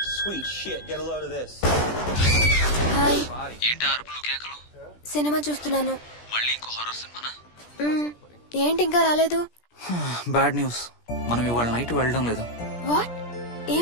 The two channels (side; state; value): right; late; 17 ms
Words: హాయ్. ఏంటి అరుపులు కేకలు? సినిమా చూస్తున్నాను. మళ్ళీ ఇంకో హారర్ సినిమానా? ఏంటి ఇంకా రాలేదు? బ్యాడ్ న్యూస్, మనం ఇవాళ నైట్ వెళ్ళడం లేదు. వాట్?